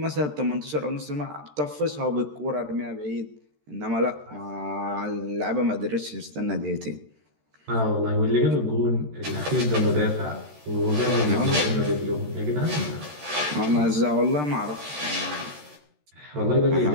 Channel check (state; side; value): late; left; 13 ms